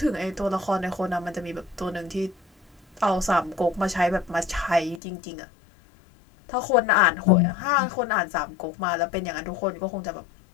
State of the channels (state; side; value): drops out; right; at 5.0 s